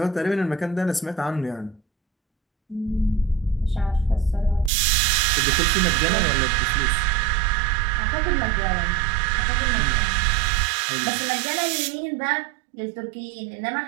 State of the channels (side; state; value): left; drops out; at 4.7 s